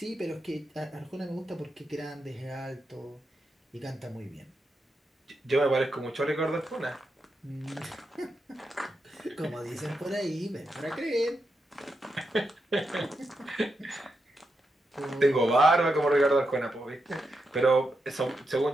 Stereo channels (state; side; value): normal; both; correlation 0.85